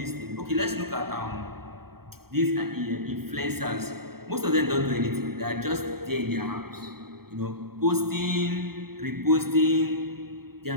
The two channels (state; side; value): late; left; 0.95 ms